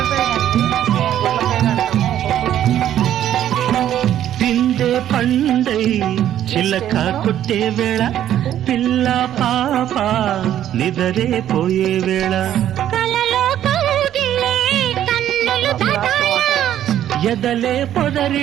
పిండే పండై చిలక కొట్టే వేళ పిల్ల పాప నిదరే పోయే వేళ కలలో కౌగిలే కన్నులు దాటాల ఎదలే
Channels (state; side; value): quieter; left; 11.4 dB